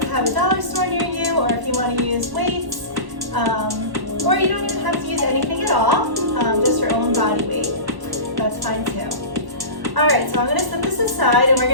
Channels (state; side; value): late; left; 1.1 ms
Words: have a dollar store near you, or if you want to use weights, or you don't even have to use anything at all, just your own body weight, that's fine too. Alright, so I'm going to set this aside and we're